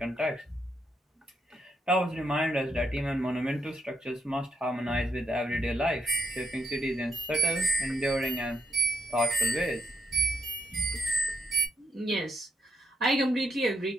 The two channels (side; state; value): both; normal; correlation 0.78